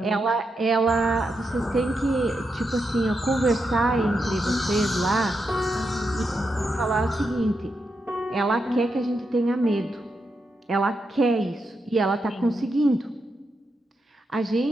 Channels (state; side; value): normal; both; correlation 0.85